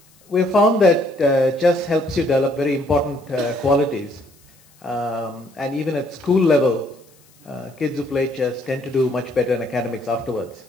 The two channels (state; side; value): noise; left; hiss, 30 dB below the sound